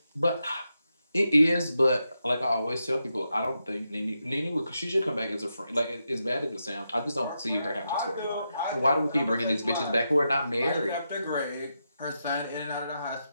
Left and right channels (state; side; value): inverted; both; correlation -0.85